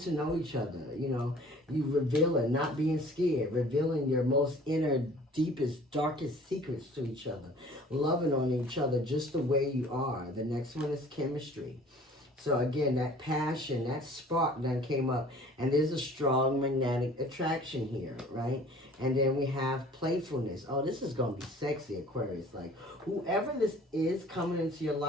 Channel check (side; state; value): both; normal; correlation 0.50